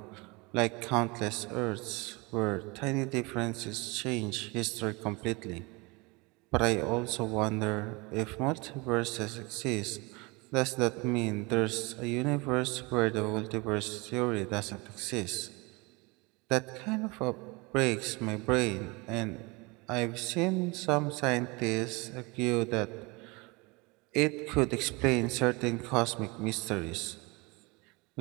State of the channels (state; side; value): quieter; left; 26.3 dB